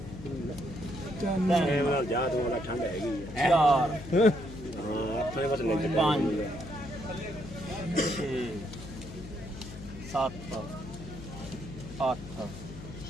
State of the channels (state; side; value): noise; left; hum, 12 dB below the sound